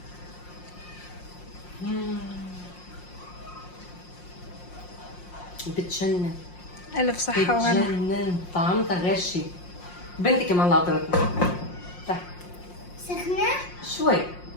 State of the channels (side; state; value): right; late; 5.6 ms